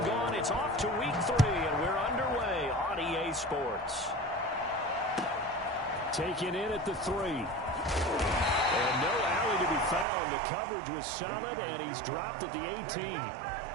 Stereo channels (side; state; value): left; drops out; at 10.1 s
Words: gone. It's off to week 3, and we're underway on EA Sports. Taken in at the 3. And no alley to be found. The coverage was solid, and he's dropped at the 18.